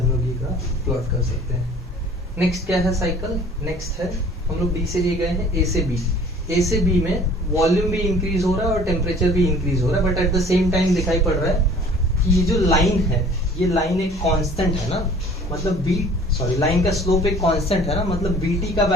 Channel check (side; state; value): both; normal; correlation 0.50